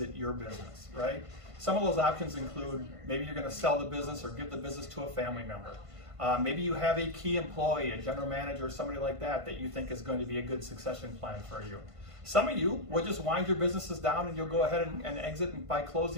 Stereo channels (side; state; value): left; late; 1.5 ms